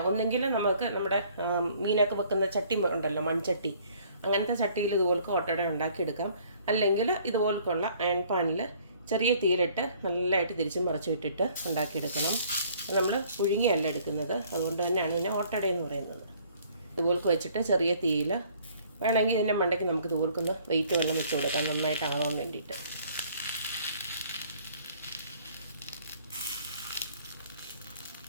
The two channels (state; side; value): inverted; both; correlation -0.58